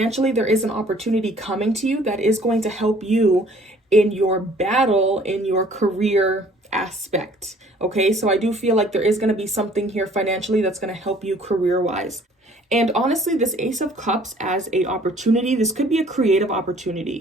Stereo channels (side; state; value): both; normal; correlation 0.56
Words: there is an opportunity coming to you that is going to help you in your battle, in your career aspect. Okay, so I do feel like there is going to be something here financially that's going to help you career-wise. And honestly, this Ace of Cups as a opportunity, this could be a creative